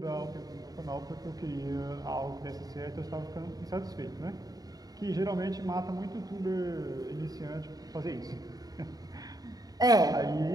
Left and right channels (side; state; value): left; late; 0.18 ms